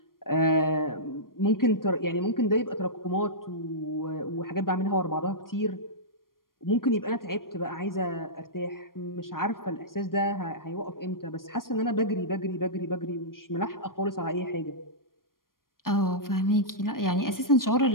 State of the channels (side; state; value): right; late; 0.91 ms